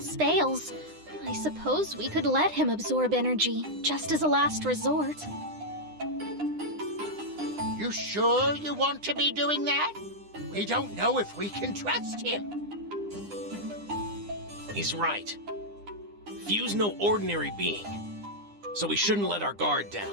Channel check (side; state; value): left; late; 9.8 ms